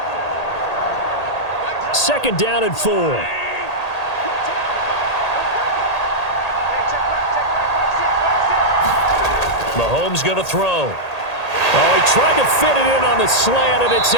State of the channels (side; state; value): right; late; 1.8 ms